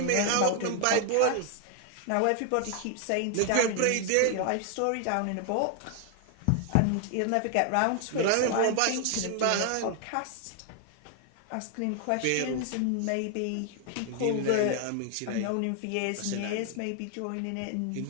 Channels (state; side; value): different; both; correlation 0.00